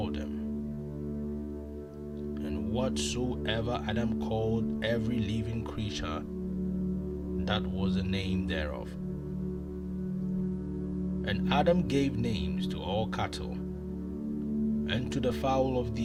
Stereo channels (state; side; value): identical; both; correlation 1.00